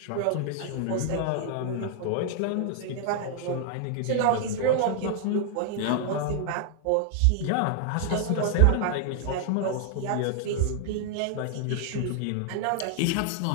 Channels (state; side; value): different; both; correlation 0.00